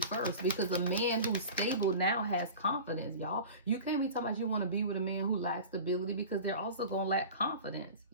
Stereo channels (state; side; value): inverted; both; correlation -0.35